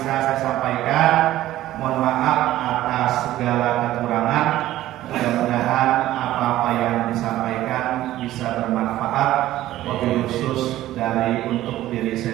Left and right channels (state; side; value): quieter; left; 14.6 dB